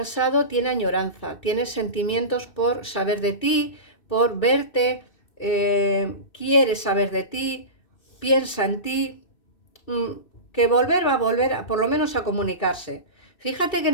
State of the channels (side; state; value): right; late; 2.6 ms